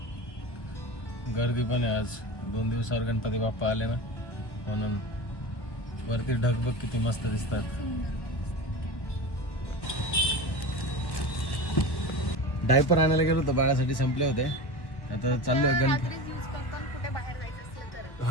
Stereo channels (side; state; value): right; late; 1.3 ms